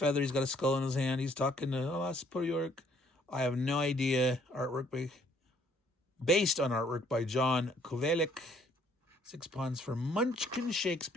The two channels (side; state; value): both; normal; correlation 0.64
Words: he's got a skull in his hand. He's talking to Oscar York. I have no idea. Based on artwork by John Kovelik. 6 pawns for Munchkin